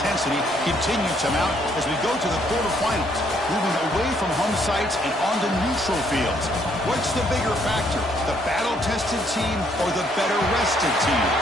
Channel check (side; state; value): both; normal; correlation 0.68